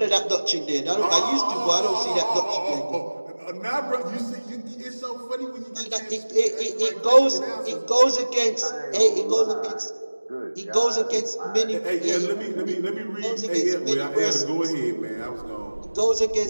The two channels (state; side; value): inverted; both; correlation -1.00